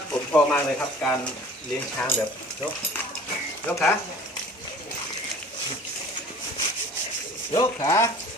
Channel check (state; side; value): normal; both; correlation 0.47